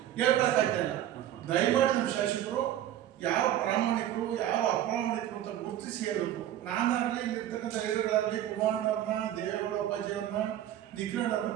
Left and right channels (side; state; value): left; quieter; 12.0 dB